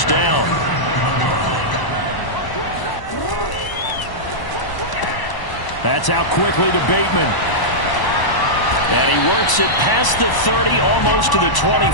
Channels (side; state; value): right; late; 1.0 ms